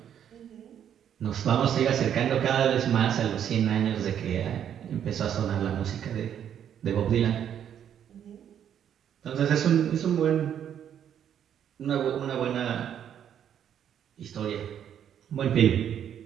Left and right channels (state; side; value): quieter; left; 9.4 dB